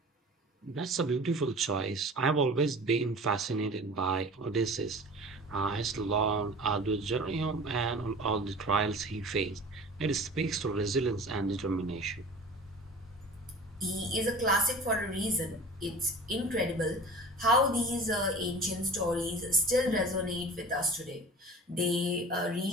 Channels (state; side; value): normal; both; correlation 0.40